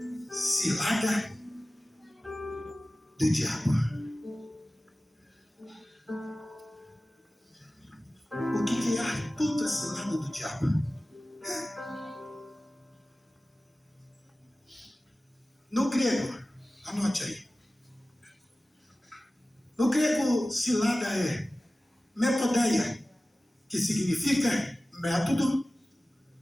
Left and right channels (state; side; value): normal; both; correlation 0.96